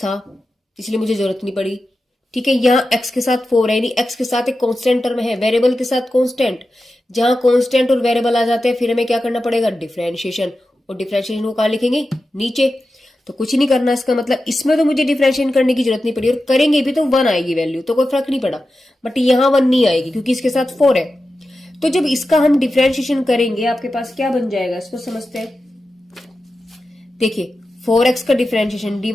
इसलिए मुझे जरूरत नहीं पड़ी, ठीक है, यहाँ x के साथ 4 है, यानी x के साथ एक कांस्टेंट टर्म है, वेरिएबल के साथ कांस्टेंट। जहां कांस्टेंट और वेरिएबल आ जाते हैं फिर हमें क्या करना पड़ेगा, डिफरेंशिएशन, और डिफरेंशिएशन को कहां लिखेंगे, नीचे। तो कुछ नहीं करना, इसका मतलब इसमें तो मुझे डिफरेंशिएशन करने की जरूरत नहीं पड़ी, और करेंगे भी तो 1 आएगी वैल्यू, तो कोई फर्क नहीं पड़ा, बट यहाँ 1 नहीं आएगी क्योंकि इसके साथ 4 है। तो जब इसका हम डिफरेंशिएशन करेंगे आपके पास क्या बन जाएगा, इसको समझते हैं। देखिए 4x का डिफरेंशिएशन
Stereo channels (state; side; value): normal; both; correlation 0.92